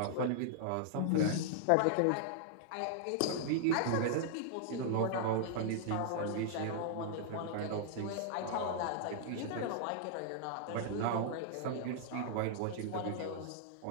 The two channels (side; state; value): both; different; correlation -0.01